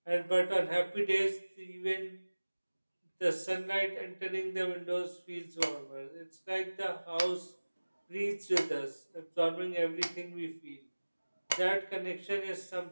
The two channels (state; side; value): inverted; both; correlation -1.00